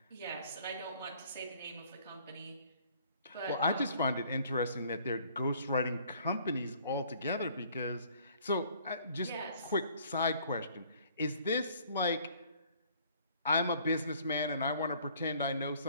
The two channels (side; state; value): both; inverted; correlation -0.58